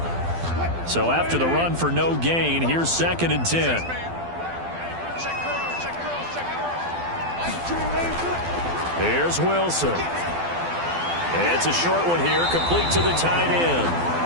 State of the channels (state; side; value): late; left; 12 ms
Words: So after the run for no gain, here's 2nd and 10. Here's Wilson. It's a short one here, complete to the tight end.